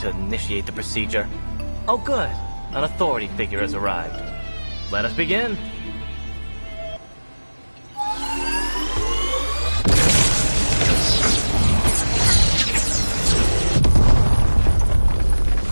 initiate the procedure. Oh good. An authority figure has arrived. Let us begin.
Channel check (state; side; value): inverted; both; correlation -1.00